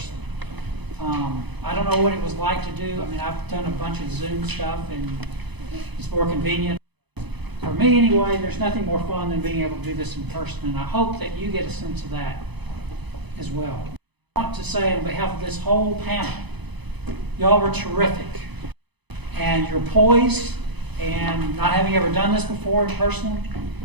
I don't know what it was like to do. I mean, I've done a bunch of Zoom stuff, and it's more convenient. For me, anyway, there's nothing more fun than being able to do this in person, and I hope that you get a sense of that as well. I want to say on behalf of this whole panel, y'all were terrific, and you're poised, and not having ever done this before in person,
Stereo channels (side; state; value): left; late; 0.99 ms